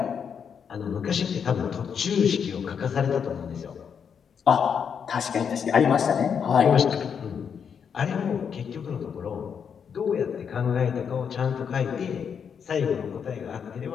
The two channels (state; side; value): quieter; right; 7.1 dB